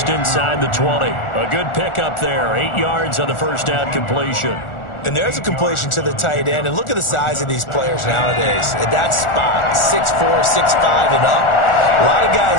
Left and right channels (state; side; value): late; right; 1.4 ms